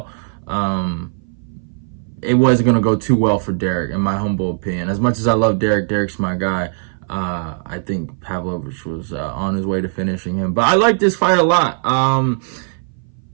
it wasn't going to go too well for Derek, in my humble opinion. As much as I love Derek, Derek's my guy. I think Pavlovich was on his way to finishing him. But I like this fight a lot.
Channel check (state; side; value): silent; left; 59 dB below the other